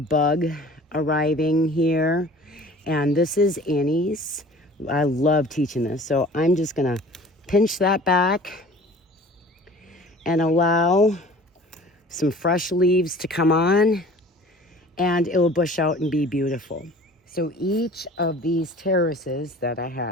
bug arriving here. And this is Annie's. I love teaching this. So I'm just gonna pinch that back and allow some fresh leaves to come on, and it will bush out and be beautiful. So each of these terraces that I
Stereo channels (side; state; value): both; normal; correlation 0.46